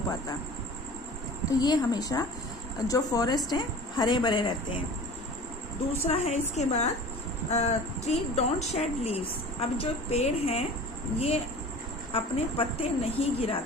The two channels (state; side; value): normal; both; correlation 0.40